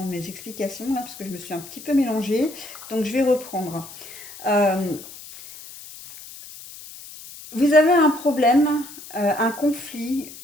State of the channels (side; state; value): left; noise; hiss, 16 dB below the sound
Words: mes explications là, parce que je me suis un petit peu mélangée. Donc, je vais reprendre. Euh, Vous avez un problème, un conflit